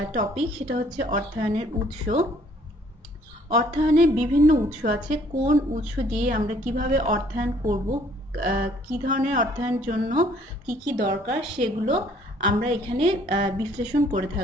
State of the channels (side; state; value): both; normal; correlation 0.61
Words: টপিক সেটা হচ্ছে অর্থায়নের উৎস। অর্থায়নের বিভিন্ন উৎস আছে, কোন উৎস দিয়ে আমরা কিভাবে অর্থায়ন করব, কি ধরনের অর্থায়নের জন্য কি কি দরকার সেগুলো আমরা এখানে বিশ্লেষণ করে